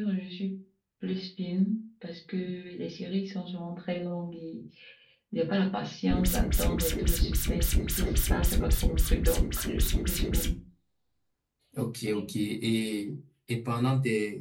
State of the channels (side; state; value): both; identical; correlation 1.00